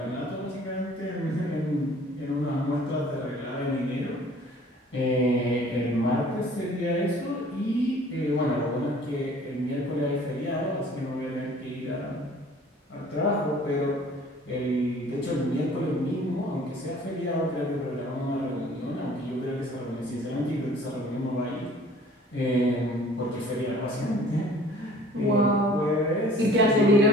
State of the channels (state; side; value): normal; both; correlation 0.51